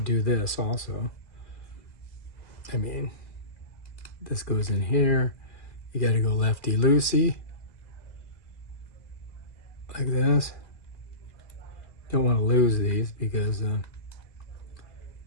do this also. I mean, this goes in here. You got to go lefty-loosey, like this. Don't want to lose these because that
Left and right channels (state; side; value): late; right; 2.4 ms